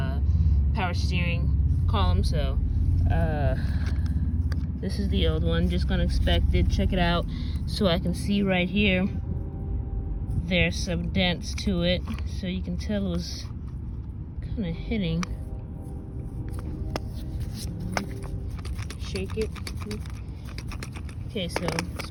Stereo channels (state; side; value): identical; both; correlation 1.00